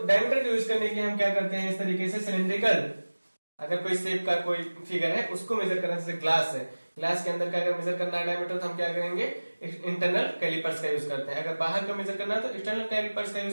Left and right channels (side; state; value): both; inverted; correlation -1.00